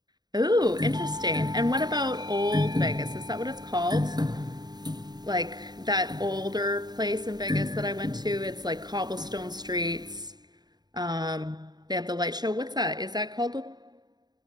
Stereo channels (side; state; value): left; late; 0.20 ms